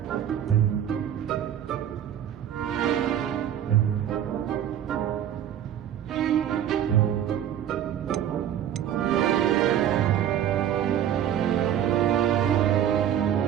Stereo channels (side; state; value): left; quieter; 10.4 dB